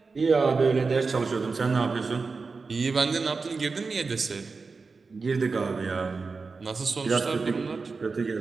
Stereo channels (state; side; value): quieter; left; 4.4 dB